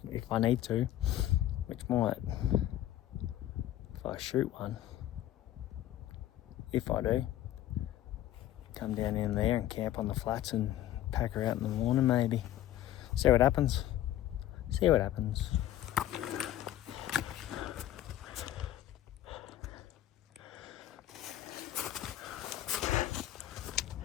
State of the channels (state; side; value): quieter; right; 13.1 dB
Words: I need to, which might, if I shoot one, if I do, come down in there and camp on the flats and pack her out in the morning maybe. See what happens. See what happens.